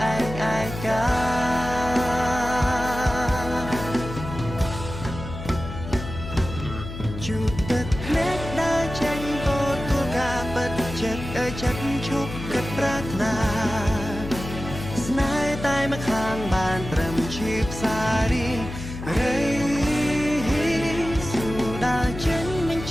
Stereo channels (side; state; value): left; noise; hum, 9 dB below the sound